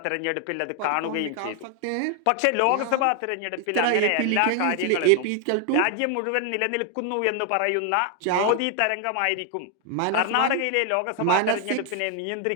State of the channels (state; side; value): different; both; correlation 0.00